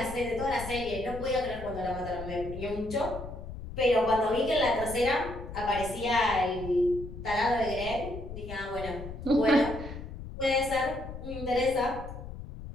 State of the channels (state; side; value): noise; left; rumble, 10 dB below the sound